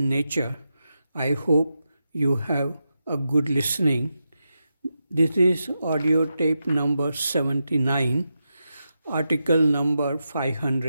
nature. I hope you have a good listening. This is audio tape number 79, article number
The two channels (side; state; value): both; inverted; correlation -0.88